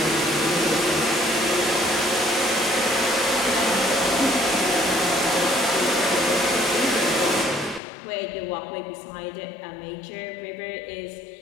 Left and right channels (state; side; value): drops out; right; at 7.8 s